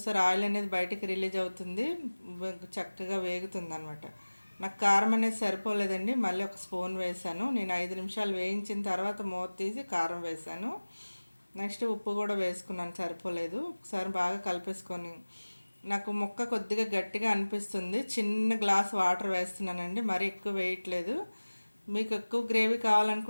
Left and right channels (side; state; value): both; inverted; correlation -1.00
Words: ఆయిల్ అనేది బయటికి రిలీజ్ అవుతుంది, చక్కగా వేగుతుంది అనమాట. నాకు కారం అనేది సరిపోలేదండి, మళ్ళీ 1 స్పూన్ వేసాను. నేను 5 నిమిషాలు వేయించిన తర్వాత మూత తీసి కారం వేసాను. నెక్స్ట్ ఉప్పు కూడా వేసుకున్నాను, సరిపోలేదు. ఒకసారి బాగా కలిపేసుకొని, నాకు ముక్క కొద్దిగా గట్టిగా అనిపిస్తుంది, చిన్న గ్లాస్ వాటర్ వేస్తున్నానండి, మరీ ఎక్కువ వేయట్లేదు. మీకు ఎక్కువ గ్రేవీ